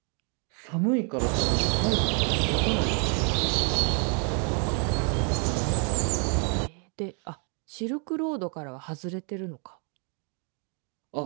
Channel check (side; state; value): left; quieter; 38.9 dB